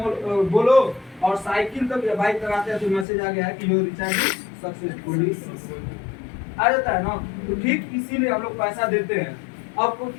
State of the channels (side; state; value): right; drops out; at 3.1 s